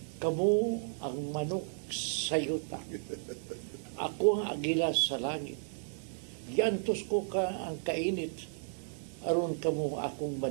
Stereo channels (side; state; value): left; silent; 55 dB below the other